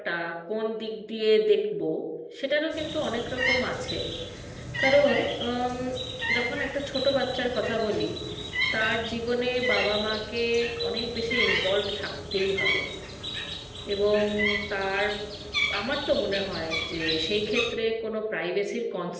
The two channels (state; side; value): identical; both; correlation 1.00